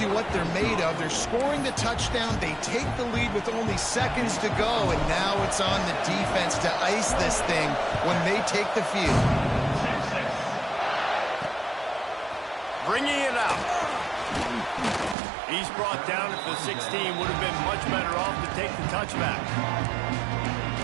you what they're made of. They're scoring the touchdown. They take the lead with only seconds to go, and now it's on the defense to ice this thing when they take the field. Bringing it out. He's brought down at the 16. Would have been much better off to take the touchback.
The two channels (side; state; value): left; drops out; at 15.2 s